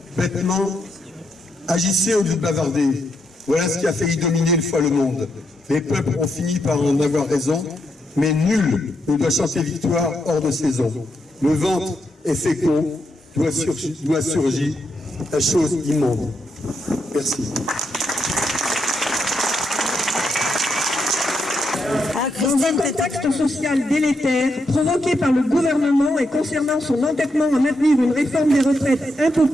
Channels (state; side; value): normal; both; correlation 0.81